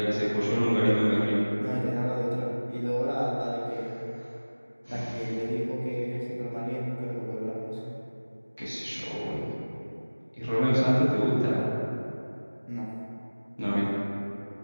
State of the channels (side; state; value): both; inverted; correlation -1.00